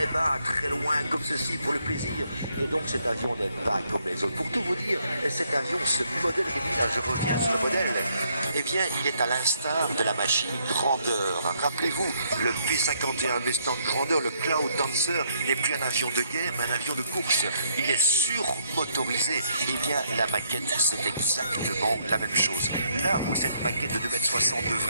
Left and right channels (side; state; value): both; inverted; correlation -0.71